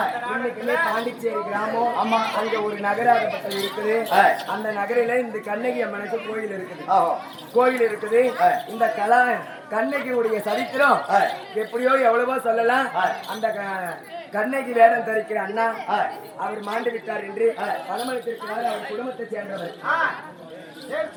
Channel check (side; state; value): both; identical; correlation 1.00